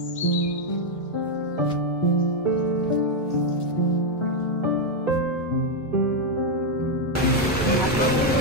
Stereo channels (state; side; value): normal; both; correlation 0.02